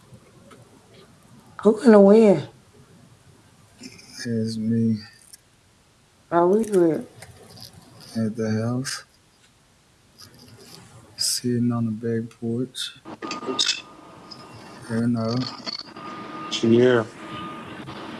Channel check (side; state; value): both; identical; correlation 1.00